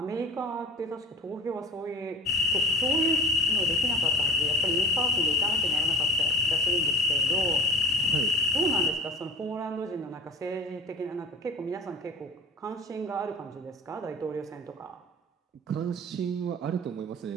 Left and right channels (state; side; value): normal; both; correlation 0.35